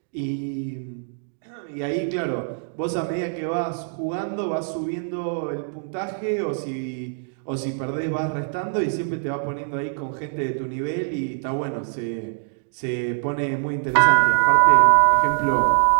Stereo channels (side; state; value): left; silent; digital silence